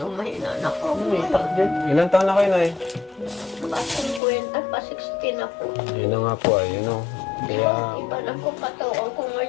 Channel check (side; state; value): right; drops out; at 4.2 s